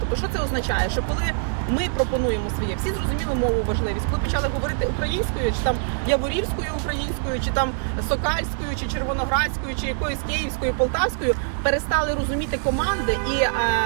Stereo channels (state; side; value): silent; left; digital silence